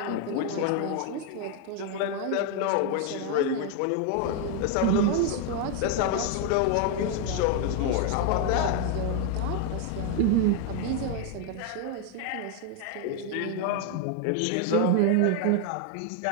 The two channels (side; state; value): both; different; correlation 0.01